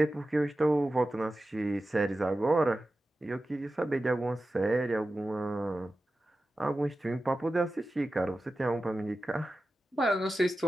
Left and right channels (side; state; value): both; normal; correlation 0.94